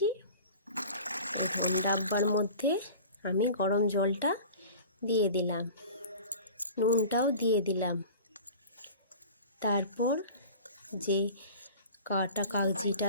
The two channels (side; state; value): both; inverted; correlation -0.40